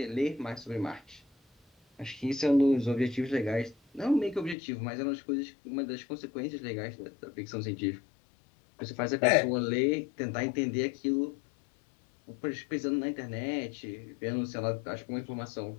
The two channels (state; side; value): drops out; right; at 4.5 s